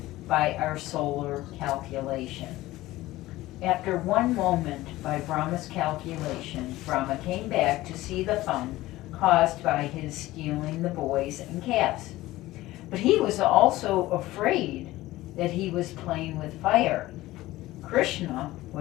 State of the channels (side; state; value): right; quieter; 17.3 dB